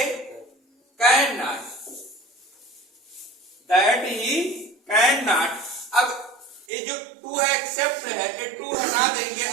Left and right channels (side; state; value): left; drops out; at 6.7 s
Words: Can not, that he can not. अब ये जो